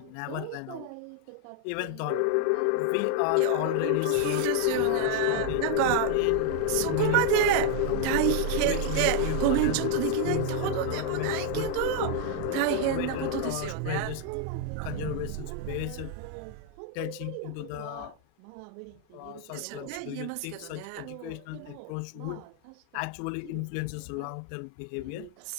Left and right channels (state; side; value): different; both; correlation 0.00